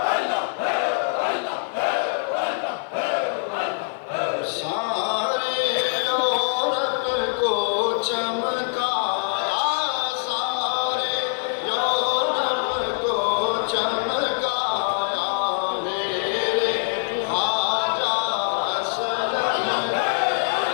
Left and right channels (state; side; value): silent; right; 56 dB below the other